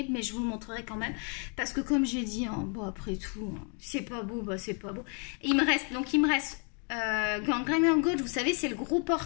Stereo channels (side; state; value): right; quieter; 39.8 dB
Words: mais je vous le montrerai quand même parce que comme j'ai dit, hein, bon après tout, hein, c'est pas beau, bah c'est pas beau. Il me reste Gangrene Gold, vous savez, c'est le gros